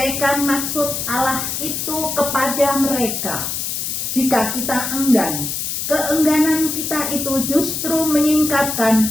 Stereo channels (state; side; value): noise; left; hiss, 3 dB below the sound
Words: maksud Allah itu kepada mereka. Jika kita enggan, keengganan kita itu justru